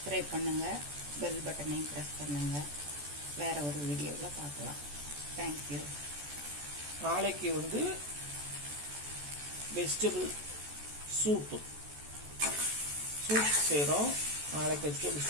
பண்ணுங்கள், பெல் பட்டனையும் ப்ரெஸ் பண்ணுங்கள். வேற ஒரு வீடியோவில் பார்க்கலாம். தேங்க்யூ. நாளைக்கு வந்து வெஜிடபிள் சூப் செய்கிறோம். நாளைக்கு வெஜிடபிள்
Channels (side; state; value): left; late; 14 ms